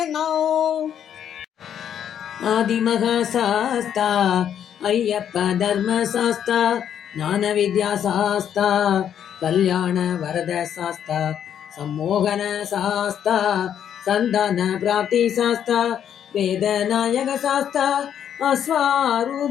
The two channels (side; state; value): right; quieter; 9.3 dB